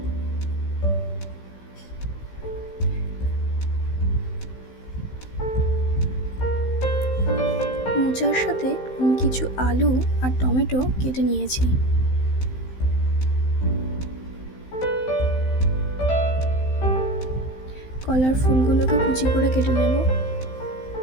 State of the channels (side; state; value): right; late; 15 ms